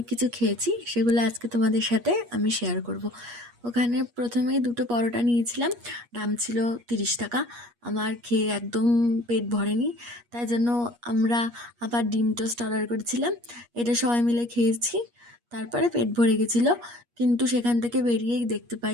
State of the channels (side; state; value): left; late; 8.4 ms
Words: কিছু খেয়েছি। সেগুলো আজকে তোমাদের সাথে আমি শেয়ার করব। ওখানে প্রথমে দুটো পরোটা নিয়েছিলাম, দাম ছিল 30 টাকা। আমার খেয়ে একদম পেট ভরেনি, তাই জন্য আমরা আবার ডিম টোস্ট অর্ডার করেছিলাম। এটা সবাই মিলে খেয়েছি, তারপরে পেট ভরে গেছিলো। কিন্তু সেখান থেকে বেরিয়েই দেখতে পাই